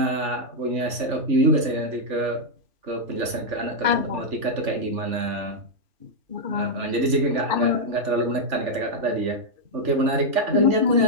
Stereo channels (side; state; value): left; late; 3.4 ms